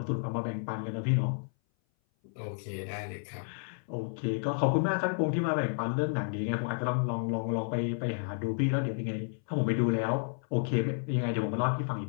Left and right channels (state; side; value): silent; right; 57 dB below the other